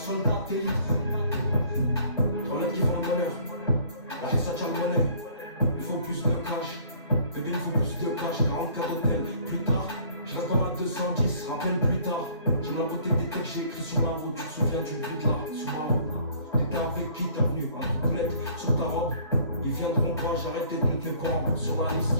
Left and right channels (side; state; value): both; inverted; correlation -0.56